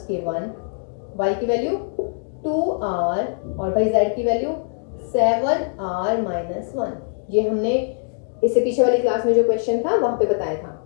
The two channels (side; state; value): right; silent; digital silence